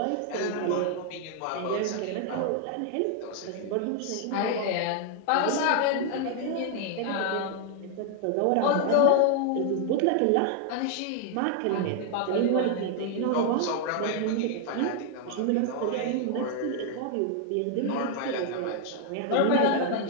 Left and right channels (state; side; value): different; both; correlation 0.00